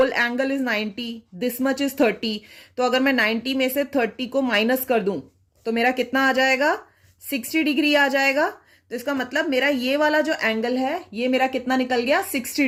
angle is 90, this much is 30, तो अगर मैं 90 में से 30 को माइनस कर दूं तो मेरा कितना आ जाएगा? 60 डिग्री आ जाएगा. तो इसका मतलब मेरा ये वाला जो एंगल है ये मेरा कितना निकल गया? 60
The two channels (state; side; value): identical; both; correlation 1.00